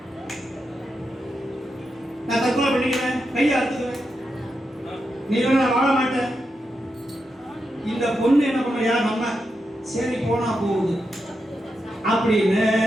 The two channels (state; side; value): normal; both; correlation 0.86